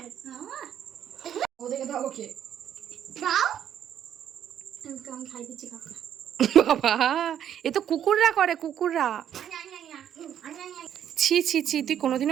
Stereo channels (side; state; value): left; quieter; 9.9 dB